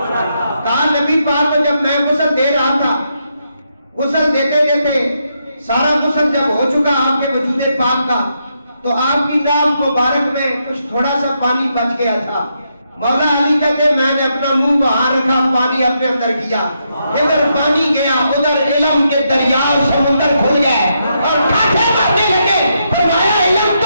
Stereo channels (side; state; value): both; inverted; correlation -0.80